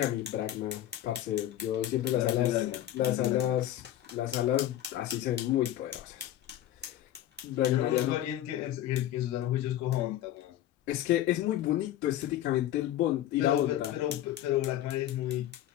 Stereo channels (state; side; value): quieter; right; 12.7 dB